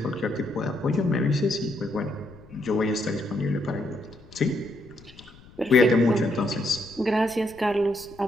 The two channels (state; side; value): noise; left; rumble, 23 dB below the sound